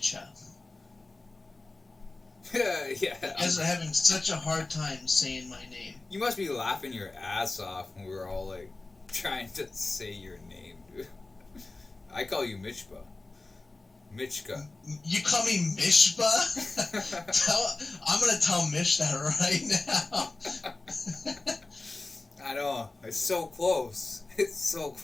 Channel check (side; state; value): right; quieter; 3.2 dB